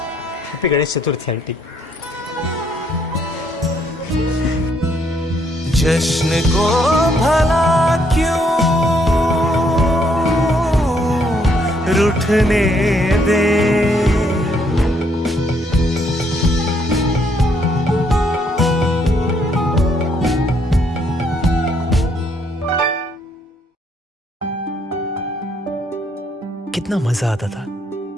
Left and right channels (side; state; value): both; normal; correlation 0.70